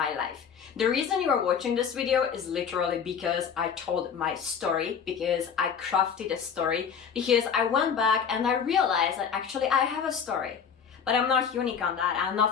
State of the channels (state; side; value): quieter; right; 7.1 dB